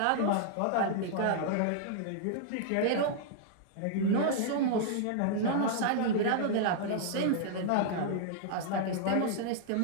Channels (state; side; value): different; both; correlation -0.01